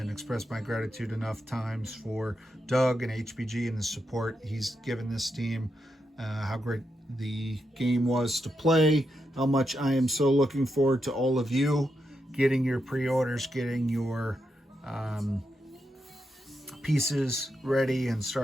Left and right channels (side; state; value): both; normal; correlation 0.85